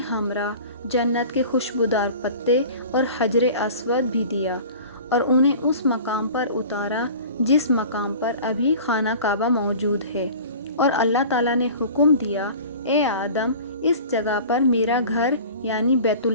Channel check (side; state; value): both; inverted; correlation -0.40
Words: ہمراہ جنت کے خوشبودار پتے اور حجر اسود بھی دیا اور انہیں اس مقام پر اتارا جس مقام پر ابھی خانہ کعبہ موجود ہے، اور اللہ تعالیٰ نے حکم دیا، اے آدم، اس جگہ پر میرا گھر یعنی بیت